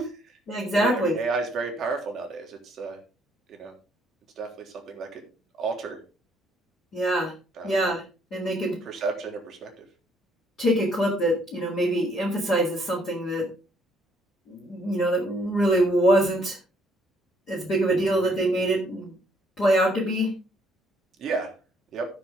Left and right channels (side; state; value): both; normal; correlation 0.67